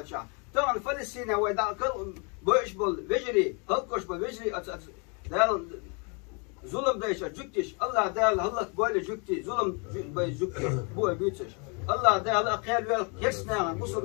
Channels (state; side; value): quieter; right; 34.9 dB